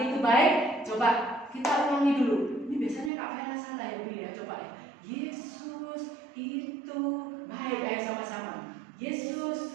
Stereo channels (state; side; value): drops out; left; at 3.1 s